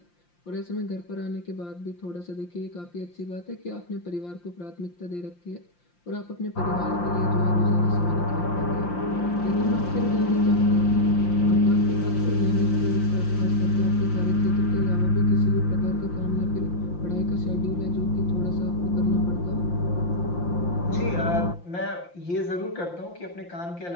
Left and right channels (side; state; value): right; late; 5.8 ms